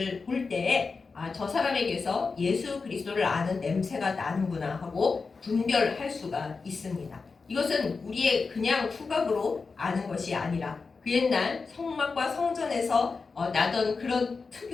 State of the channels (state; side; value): quieter; right; 4.5 dB